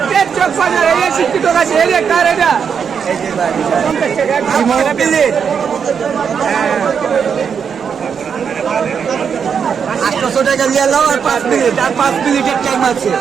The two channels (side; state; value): left; quieter; 6.9 dB